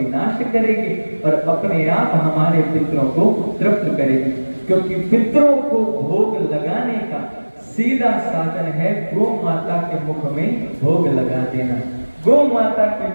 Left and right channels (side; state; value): both; inverted; correlation -1.00